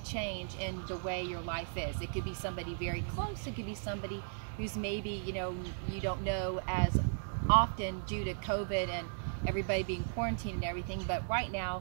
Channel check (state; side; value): silent; left; digital silence